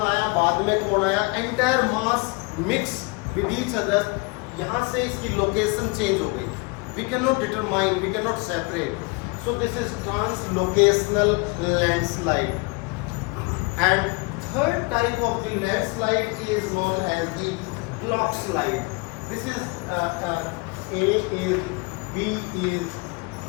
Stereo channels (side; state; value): right; quieter; 29.2 dB